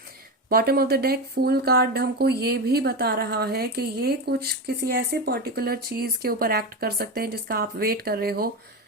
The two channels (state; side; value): normal; both; correlation 0.18